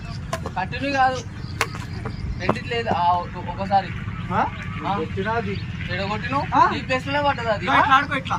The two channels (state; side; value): identical; both; correlation 1.00